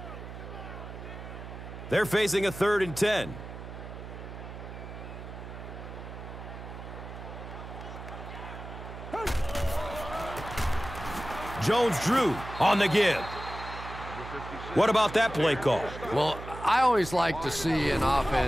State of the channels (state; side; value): noise; right; hum, 11 dB below the sound